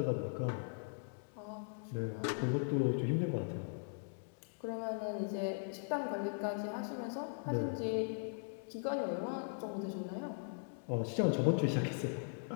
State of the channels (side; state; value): right; silent; digital silence